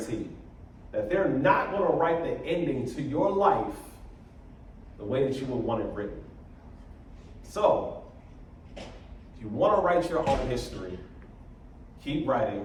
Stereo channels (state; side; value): identical; both; correlation 1.00